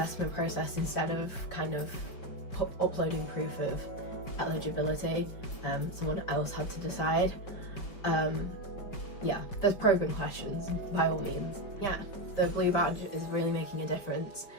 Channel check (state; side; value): late; right; 5.5 ms